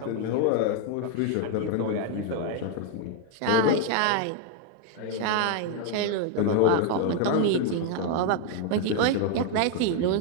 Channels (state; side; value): different; both; correlation 0.01